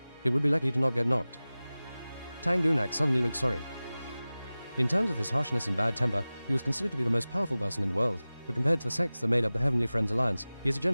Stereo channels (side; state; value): both; inverted; correlation -0.98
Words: It would be lucky to not get knocked. Tang Gunak suddenly looked sorry. In terms of his harshness and bad temper, he was considered to be the most powerful person in the world, but compared to the sects that made up the Heavenly Friends Alliance, he is a